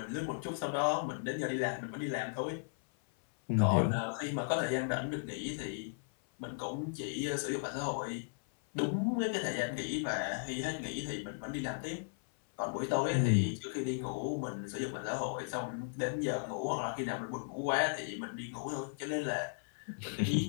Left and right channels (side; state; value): right; silent; 54 dB below the other